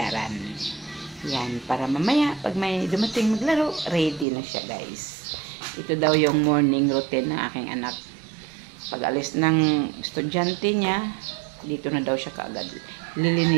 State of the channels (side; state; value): left; drops out; at 4.2 s